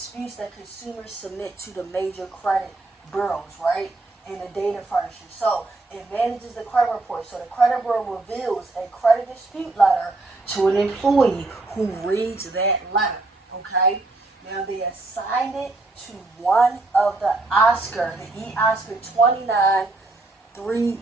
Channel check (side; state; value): left; quieter; 3.1 dB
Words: that consumers submit to the major credit bureaus, right? And the data furnishers. So it manages the credit report. So the credit bureau reveals a credit dispute letter to an employee who reads that letter. Okay? Now they assign it to one of the Oscar, the E-Oscar 29